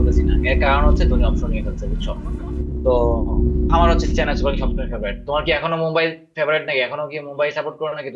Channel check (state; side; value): identical; both; correlation 1.00